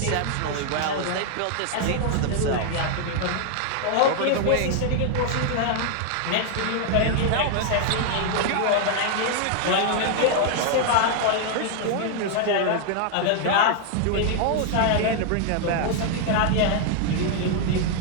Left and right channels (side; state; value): both; different; correlation 0.00